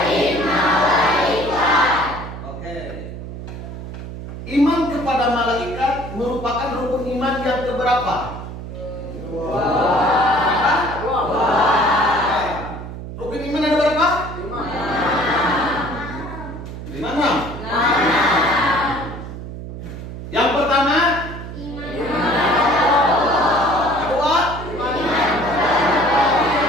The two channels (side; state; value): right; noise; hum, 10 dB below the sound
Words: malaikat. Oke. Iman kepada malaikat merupakan rukun iman yang keberapa? Rukun iman ada berapa? 5. Yang pertama, kedua,